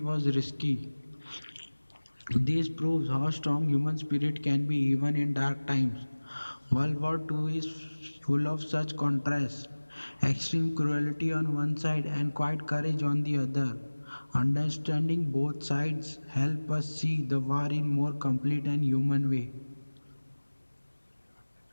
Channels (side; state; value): both; inverted; correlation -1.00